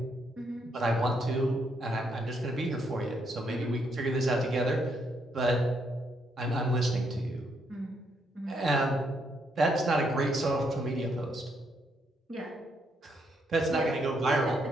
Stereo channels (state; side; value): normal; both; correlation 0.75